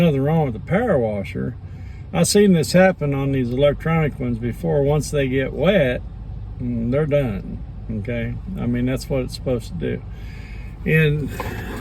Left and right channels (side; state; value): both; identical; correlation 1.00